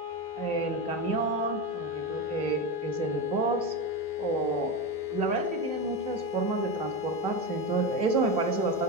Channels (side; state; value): right; late; 3.3 ms